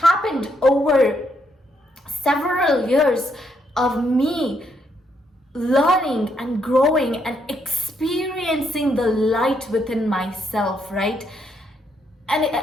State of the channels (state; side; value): normal; both; correlation 0.75